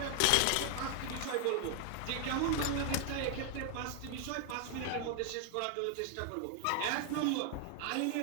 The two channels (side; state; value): both; different; correlation 0.00